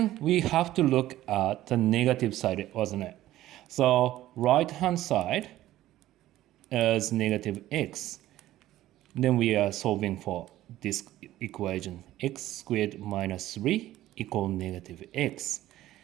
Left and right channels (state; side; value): quieter; left; 14.6 dB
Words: we have to look at the negative side, wasn't it? So right-hand side is negative x. Then we are solving for this equation, x squared minus 3 equal negative x.